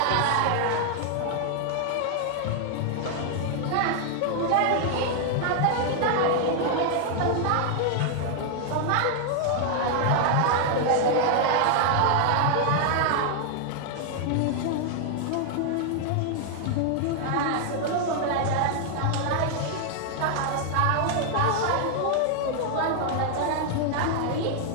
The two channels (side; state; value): both; different; correlation 0.00